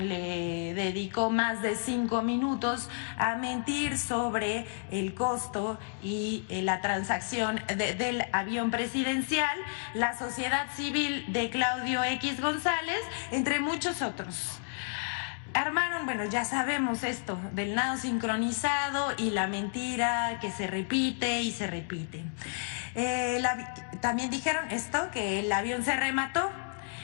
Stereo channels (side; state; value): right; silent; digital silence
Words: le dedicó más de 5 minutos a mentir sobre el costo y la transacción del avión presidencial, La Sociedad Civil de Claudio X González, entre muchos otros. Armaron, bueno, ya sabemos esto del nado sincronizado y la mentira que se repite y se repite. También dijeron esto, que el avión se remató,